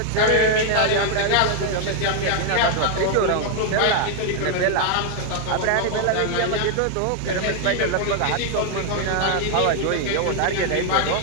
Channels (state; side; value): different; both; correlation 0.00